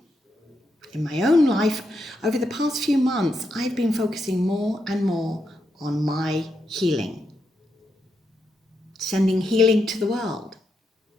In my own life, over the past few months, I've been focusing more and more on my healing. Sending healing to the world,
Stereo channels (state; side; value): normal; both; correlation 0.83